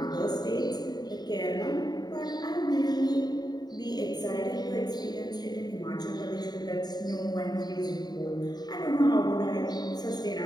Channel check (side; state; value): right; late; 0.20 ms